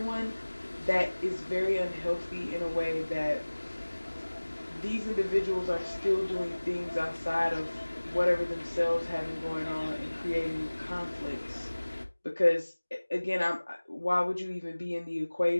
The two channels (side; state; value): both; inverted; correlation -1.00